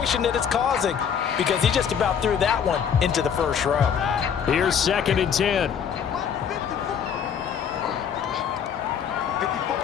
that it's causing, because he just about threw that one into the first row. Here's 2nd and 10.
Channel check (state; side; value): quieter; right; 7.7 dB